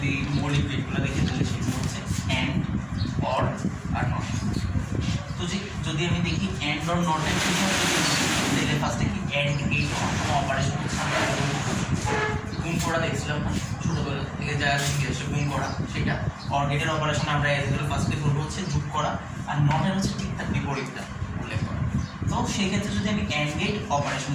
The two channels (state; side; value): identical; both; correlation 1.00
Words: মৌলিক গেটগুলো দেখে তাহলে সেগুলো হচ্ছে অ্যান্ড, অর আর নট। তো যদি আমি দেখি অ্যান্ড অর নটের বিষয়ে তাহলে ফার্স্টে কি অ্যান্ড গেট কোনো অপারেশন হচ্ছে আমরা গুণ করা দেখছিলাম না ছোটোবেলা থেকে যা শিখে গুণ করা, সেটা অর গেটের অপারেশন আমরা এগুলো ফার্স্টে করবো হচ্ছে যোগ করা, আর নটের হচ্ছে ঠিক তার বিপরীতটা উল্লেখ করা। তো সেই ক্ষেত্রে যদি আমি অ্যান্ড গেট